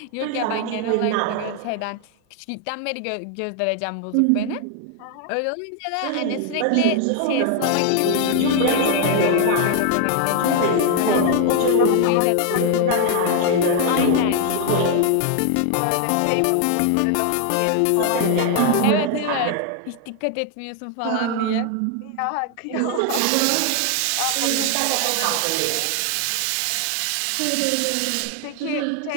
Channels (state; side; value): different; both; correlation 0.00